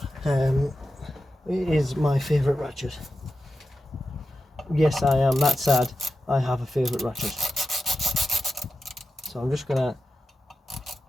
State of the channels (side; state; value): both; normal; correlation 0.90